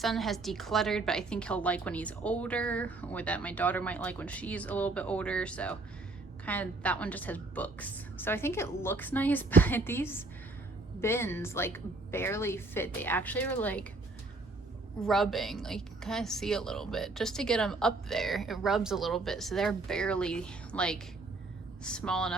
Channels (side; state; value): left; quieter; 3.2 dB